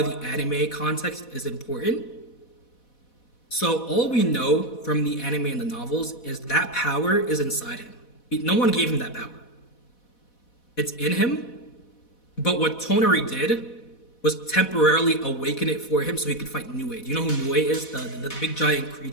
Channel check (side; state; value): right; late; 4.1 ms